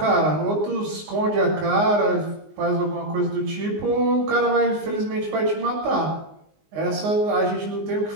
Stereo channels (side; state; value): left; late; 19 ms